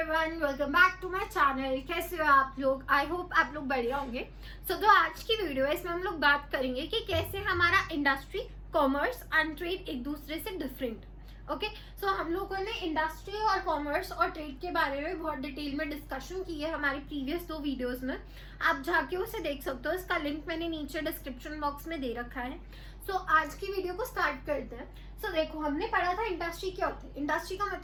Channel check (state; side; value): identical; both; correlation 1.00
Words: Everyone, welcome back to my channel. कैसे हो आप लोग? आई होप आप लोग बढ़िया होंगे। जो आज की वीडियो है इसमें हम लोग बात करेंगे कि कैसे हमारा इंडस्ट्री, कॉमर्स एंड ट्रेड एक दूसरे से डिफरेंट। ओके, सो हम लोगों ने इंडस्ट्री और कॉमर्स और ट्रेड के बारे में बहुत डिटेल में डिस्कशन की है हमारी प्रीवियस 2 वीडियोस में। आप जाके उसे देख सकते हो, इसका लिंक मैंने नीचे डिस्क्रिप्शन बॉक्स में दे रखा है। सो आज की वीडियो को स्टार्ट करते हैं। सो देखो, हमने पढ़ा था इंडस्ट्री क्या होती है। इंडस्ट्री का